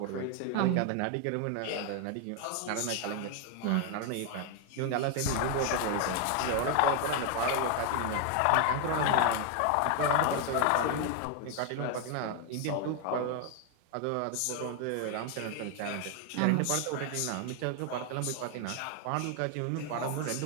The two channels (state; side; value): different; both; correlation 0.01